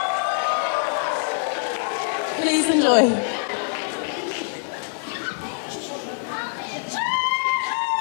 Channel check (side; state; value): right; silent; digital silence